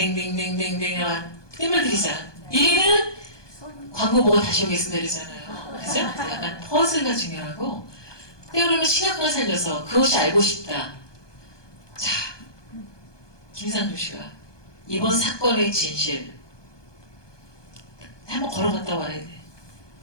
뜸을 들이자 1위는 광고 보고 다시 오겠습니다 이러잖아요. 그죠? 약간 퍼즐가 중요하고 때로는 시각을 살려서 그것이 알고 싶다. 자, 김상조 씨가 이번 사건의 진실 한번 걸어갔다 와야 돼.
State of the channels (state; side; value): late; right; 1.2 ms